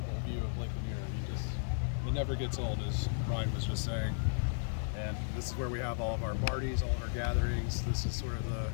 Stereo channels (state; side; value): silent; right; digital silence